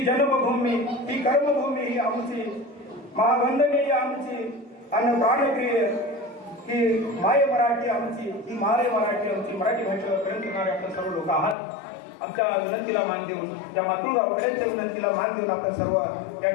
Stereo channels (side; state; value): right; drops out; at 11.6 s